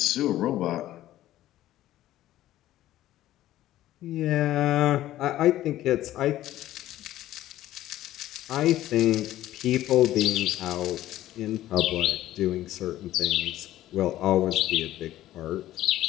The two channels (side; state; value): right; quieter; 14.1 dB